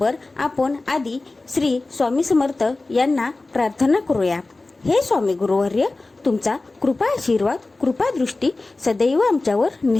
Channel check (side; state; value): right; quieter; 3.2 dB